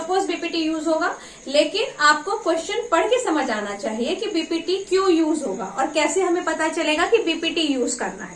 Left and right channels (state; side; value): identical; both; correlation 1.00